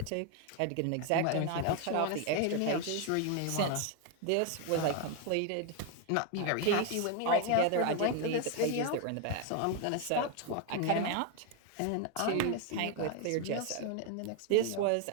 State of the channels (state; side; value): different; both; correlation 0.01